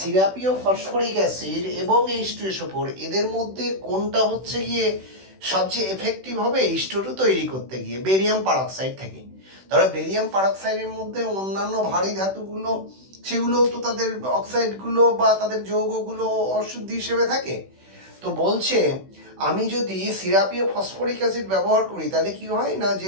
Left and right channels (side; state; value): left; late; 16 ms